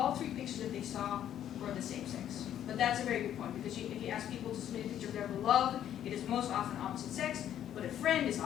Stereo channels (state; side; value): quieter; right; 10.7 dB